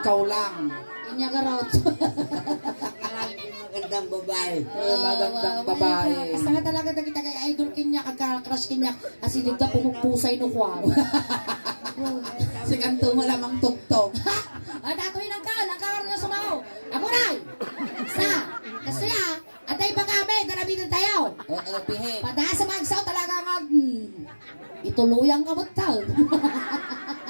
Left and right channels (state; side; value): inverted; both; correlation -1.00